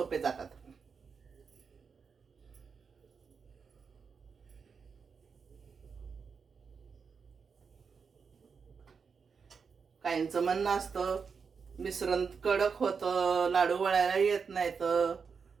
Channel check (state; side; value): quieter; left; 5.7 dB